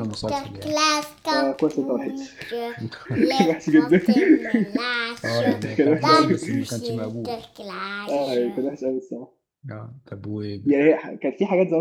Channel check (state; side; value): identical; both; correlation 1.00